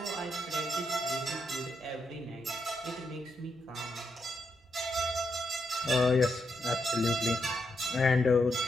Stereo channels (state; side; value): normal; both; correlation 0.82